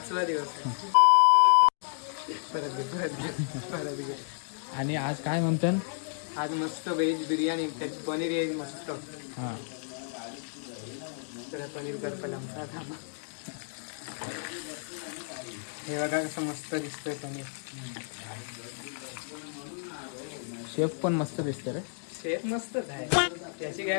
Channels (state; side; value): silent; right; digital silence